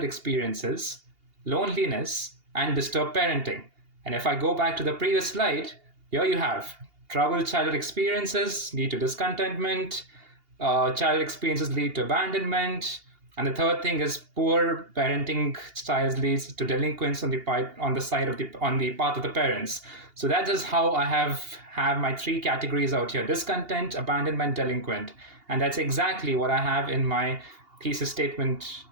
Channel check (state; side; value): late; left; 2.8 ms